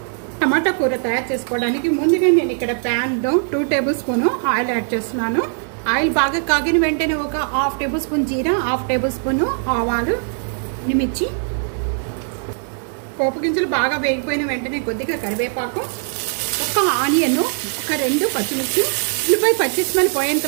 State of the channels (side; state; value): left; silent; 58 dB below the other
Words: టమాటా కూర తయారు చేసుకోవడానికి ముందుగా నేను ఇక్కడ ప్యాన్లో 2 టేబుల్ స్పూన్ ఆయిల్ యాడ్ చేస్తున్నాను. ఆయిల్ బాగా కాగిన వెంటనే ఒక 1/2 టేబుల్ స్పూన్ జీరా, 1/2 టేబుల్ స్పూన్ ఆవాలు, మిర్చి, పోపు గింజలు బాగా వేగిపోయిన వెంటనే కొద్దిగా కరివేపాకు, ఒక ఆనియన్, ఒక 2 పచ్చిమిర్చి, ఉల్లిపాయ పచ్చి స్మెల్ పోయేంత